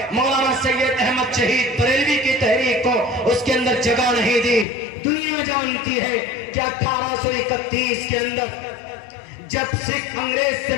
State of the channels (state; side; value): drops out; right; at 4.7 s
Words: مولانا سید احمد شہید بریلوی کی تحریک کو اس کے اندر جگہ نہیں دی۔ دنیا جانتی ہے کہ 1831 کے اندر جب سکھ انگریز سے